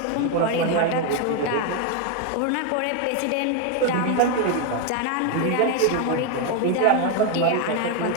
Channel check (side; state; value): both; different; correlation 0.01